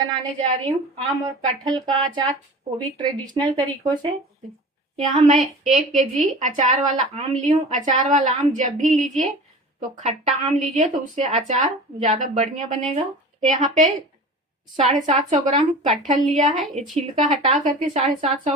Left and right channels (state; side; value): normal; both; correlation 0.37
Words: जा रही हूँ आम और कटहल का अचार, वो भी ट्रेडिशनल तरीकों से। यहाँ मैं 1 केजी अचार वाला आम ली हूँ। अचार वाला आम जब भी लीजिए तो खट्टा आम लीजिए, तो उससे अचार ज़्यादा बढ़िया बनेगा। यहाँ पे 750 ग्राम कटहल लिया है। ये छिलका हटा करके